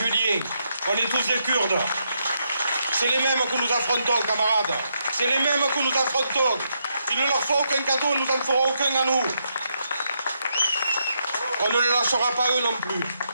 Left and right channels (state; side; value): inverted; both; correlation -0.79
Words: on est tous des Kurdes. C'est les mêmes que nous affrontons, camarades. C'est les mêmes que nous affrontons. Il ne leur faut aucun cadeau, nous n'en ferons aucun à nous. On ne les lâchera pas eux non plus.